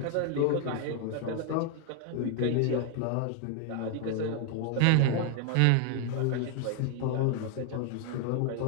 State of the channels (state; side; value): different; both; correlation 0.00